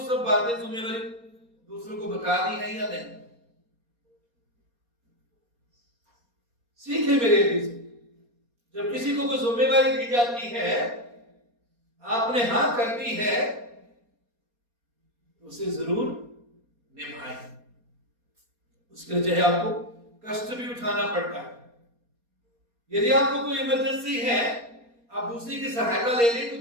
सब बातें जिम्मेवारी दूसरों को बता दी है या नहीं। सीखे मेरे लिए, जब किसी को कोई जिम्मेवारी दी जाती है, आपने हाँ कर दी है, तो उसे जरूर निभाएं। उसके लिए चाहे आपको कष्ट भी उठाना पड़ता है। यदि आपको कोई इमरजेंसी है, आप दूसरे की सहायता ले लें, तो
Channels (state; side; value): late; left; 4.2 ms